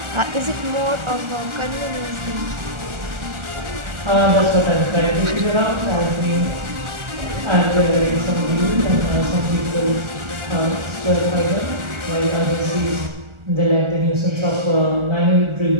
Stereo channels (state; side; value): late; left; 1.4 ms